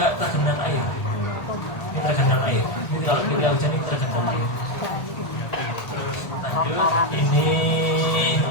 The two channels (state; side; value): late; right; 1.4 ms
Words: tergenang air. Ini tergenang air. Jadi kalau ketika hujan ini tergenang air. Lanjut, ini